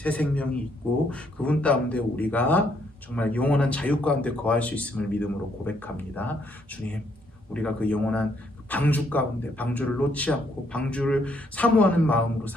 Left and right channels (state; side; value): normal; both; correlation 0.71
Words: 생명이 있고 그분 가운데 우리가 정말 영원한 자유 가운데 거할 수 있음을 믿음으로 고백합니다. 주님, 우리가 그 영원한 방주 가운데 방주를 놓지 않고 방주를 사모하는 마음으로